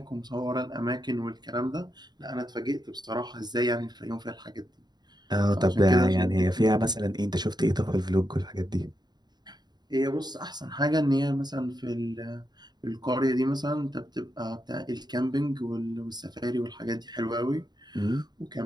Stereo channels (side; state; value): left; late; 0.20 ms